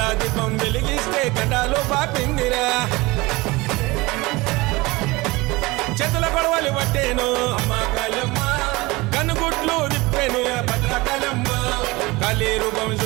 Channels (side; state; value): left; quieter; 22.4 dB